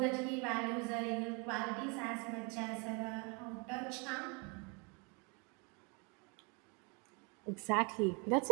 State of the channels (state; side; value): quieter; left; 32.3 dB